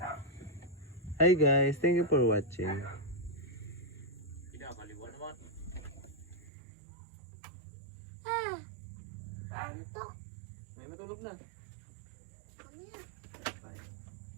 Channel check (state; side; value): drops out; left; at 6.5 s